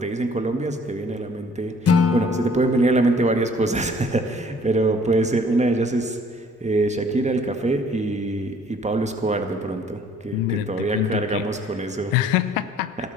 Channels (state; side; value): normal; both; correlation 0.56